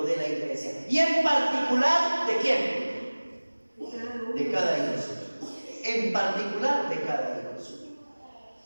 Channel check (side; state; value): both; inverted; correlation -1.00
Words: de la iglesia. Y en particular, ¿de quién? De cada hijo suyo. En particular, de cada hijo suyo.